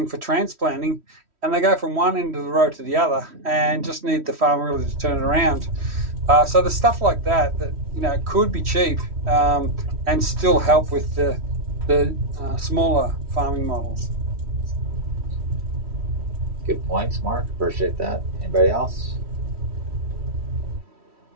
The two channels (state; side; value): late; left; 3.1 ms